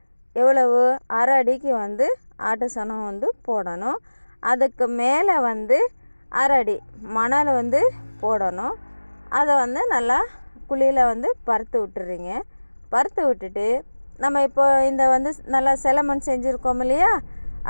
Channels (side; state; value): both; inverted; correlation -1.00